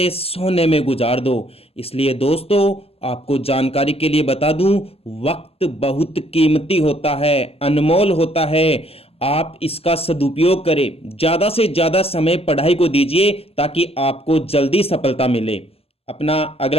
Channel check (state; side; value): late; right; 0.29 ms